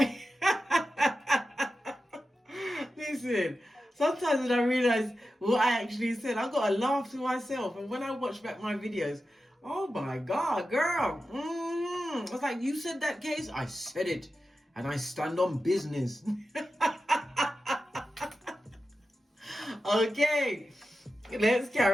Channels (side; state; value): both; normal; correlation 0.92